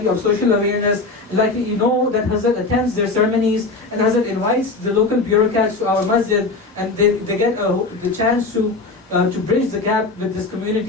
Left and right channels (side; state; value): right; quieter; 3.6 dB